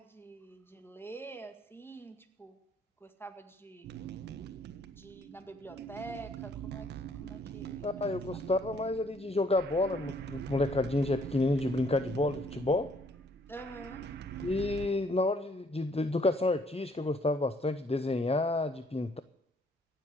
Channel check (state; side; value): normal; both; correlation 0.65